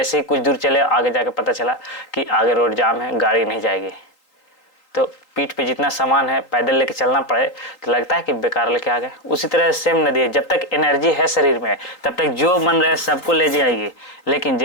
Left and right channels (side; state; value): right; late; 3.8 ms